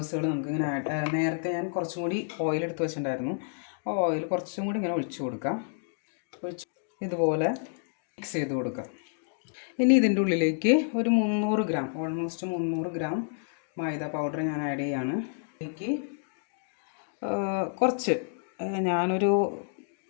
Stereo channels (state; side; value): silent; right; digital silence